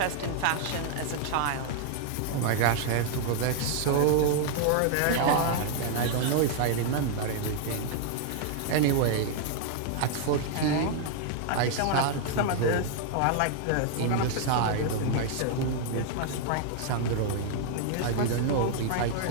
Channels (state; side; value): different; both; correlation 0.00